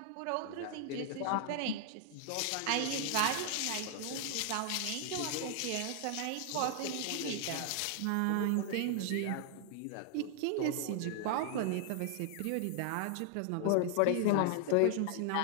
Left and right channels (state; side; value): different; both; correlation 0.00